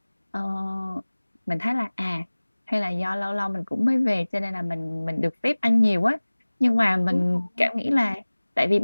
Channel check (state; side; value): inverted; both; correlation -1.00